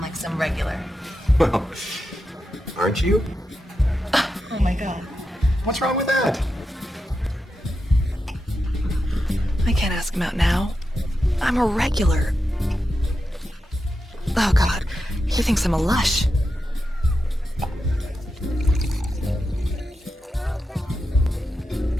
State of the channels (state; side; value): normal; both; correlation 0.88